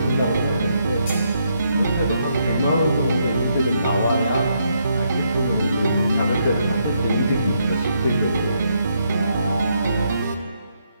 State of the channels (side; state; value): both; inverted; correlation -0.76